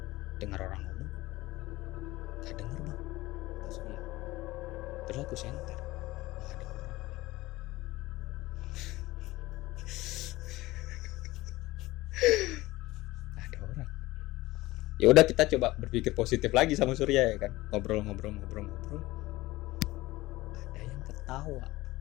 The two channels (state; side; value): quieter; right; 18.8 dB